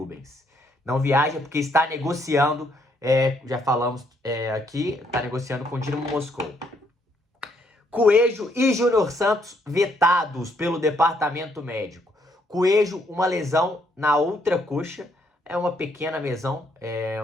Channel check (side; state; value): both; normal; correlation 0.71